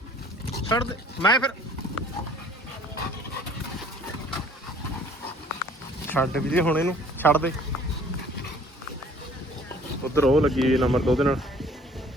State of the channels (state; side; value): normal; both; correlation 0.54